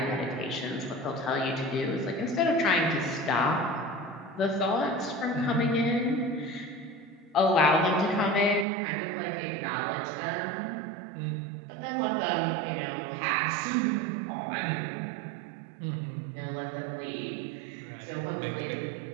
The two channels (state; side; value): drops out; left; at 8.7 s